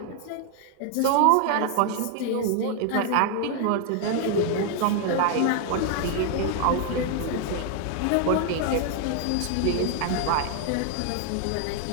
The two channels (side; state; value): both; different; correlation 0.00